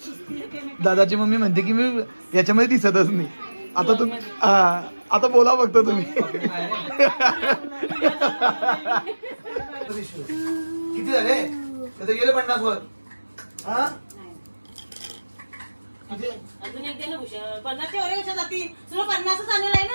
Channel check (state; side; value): inverted; both; correlation -1.00